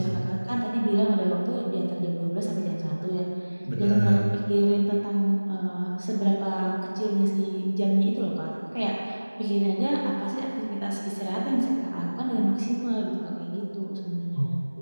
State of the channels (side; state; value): both; inverted; correlation -1.00